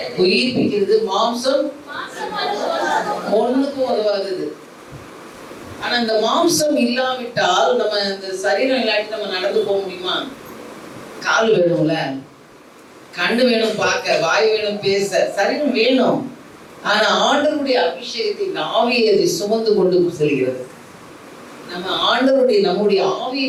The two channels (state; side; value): identical; both; correlation 1.00